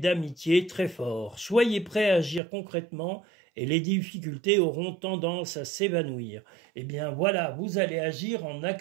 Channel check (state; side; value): drops out; left; at 2.4 s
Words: très forts. Soyez prêts à agir concrètement et les difficultés auront tendance à s'évanouir. Eh bien voilà, vous allez agir en